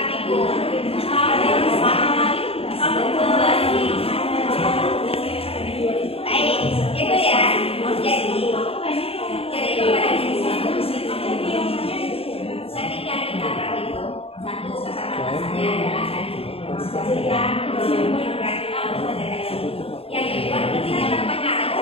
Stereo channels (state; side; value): late; right; 0.28 ms